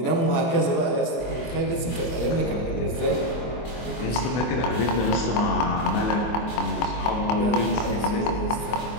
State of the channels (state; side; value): late; right; 24 ms